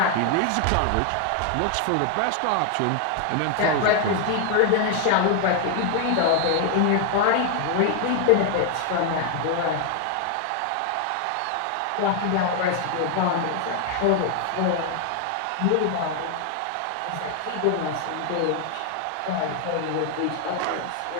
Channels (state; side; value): different; both; correlation 0.00